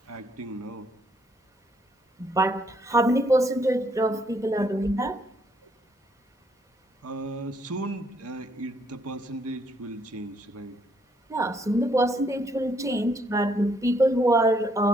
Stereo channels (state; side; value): normal; both; correlation 0.70